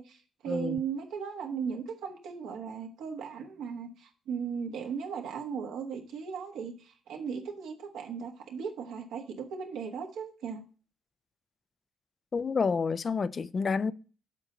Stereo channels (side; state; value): both; normal; correlation 0.73